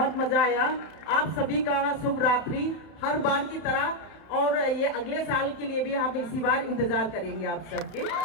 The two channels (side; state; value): right; late; 31 ms